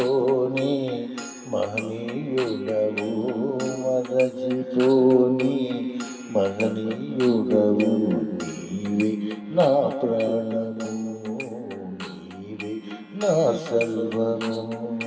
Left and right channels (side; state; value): both; identical; correlation 1.00